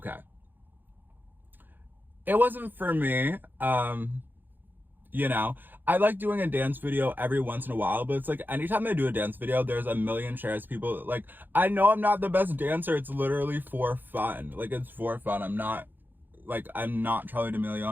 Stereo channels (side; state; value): left; late; 0.090 ms